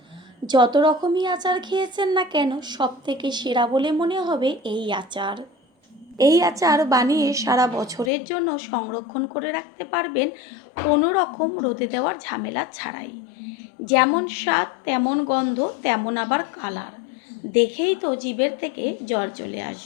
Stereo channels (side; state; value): right; drops out; at 8.1 s